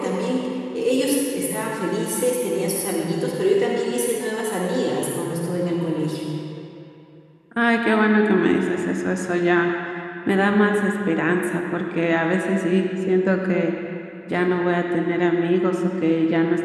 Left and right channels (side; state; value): both; identical; correlation 1.00